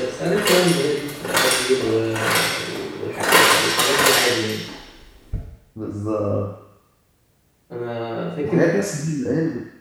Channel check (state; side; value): identical; both; correlation 1.00